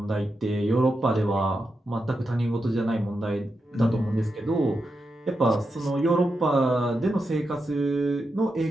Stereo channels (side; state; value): both; normal; correlation 0.87